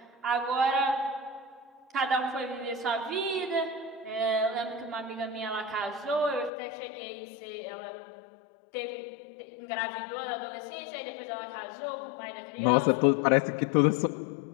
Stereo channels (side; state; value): right; drops out; at 6.5 s